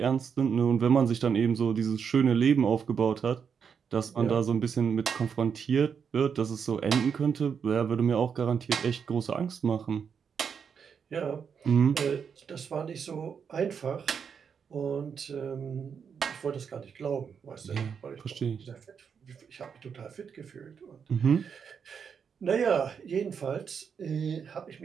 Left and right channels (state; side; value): quieter; left; 6.8 dB